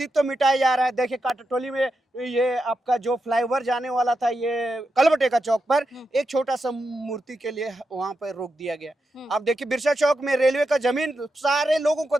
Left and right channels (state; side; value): normal; both; correlation 0.86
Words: मिटाया जा रहा है। देखिए काटाटोली में ये आपका जो फ्लाईओवर जाने वाला था, ये कलबटे का चौक पर एक छोटा सा मूर्ति के लिए वहां पर रोक दिया गया। अब देखिए बिरसा चौक में रेलवे का जमीन सारे लोगों को